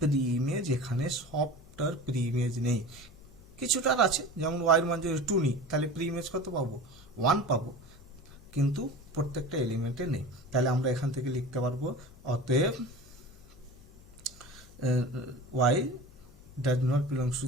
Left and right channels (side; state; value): left; noise; hum, 23 dB below the sound